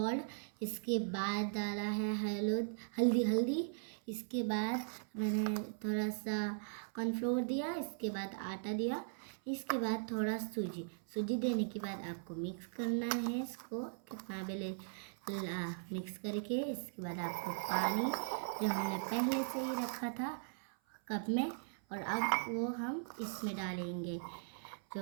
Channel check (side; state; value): left; silent; 52 dB below the other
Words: इसके बाद डाला है हल्दी, इसके बाद मैंने थोड़ा सा कॉर्नफ्लोर दिया, इसके बाद आटा दिया, इसके बाद थोड़ा सूजी देने के बाद आपको मिक्स करना है इसको कितना बेले मिक्स करके। इसके बाद आपको पानी जो हमने पहले से ही रखा था कप में, और अब वो हम इसमें डालेंगे